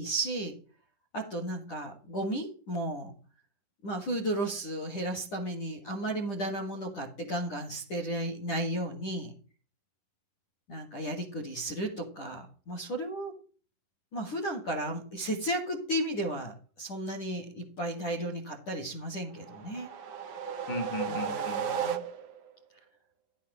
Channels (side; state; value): right; late; 10 ms